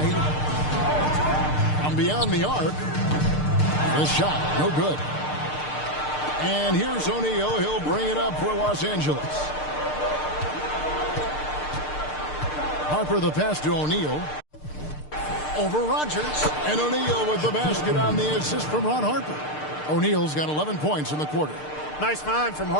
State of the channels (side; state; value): right; late; 6.6 ms